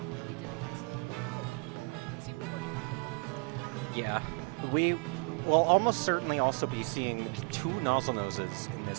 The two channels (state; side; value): quieter; left; 33.7 dB